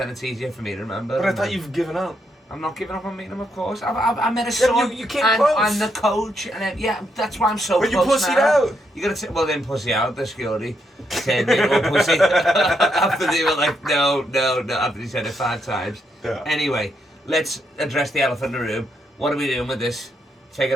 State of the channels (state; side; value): normal; both; correlation 0.78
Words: it's easier for me to remember. But I thought you've given up. I'm not giving up on meeting him, of course. I met a son. You came and close. I'm the coach, and yeah, that's why I'm so but close. But you pussied now. out. You gotta well then pussy out. The security said me to pussy after they were like no. After he said it 5 times. Yeah. Anyway, let's address the elephant in the room. What are we doing with this? Take